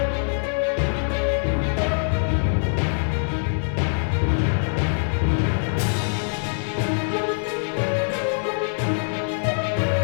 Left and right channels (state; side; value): silent; right; digital silence